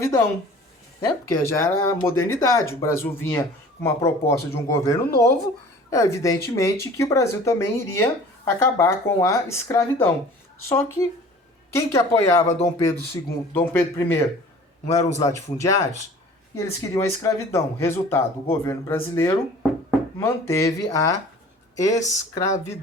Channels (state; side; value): normal; both; correlation 0.46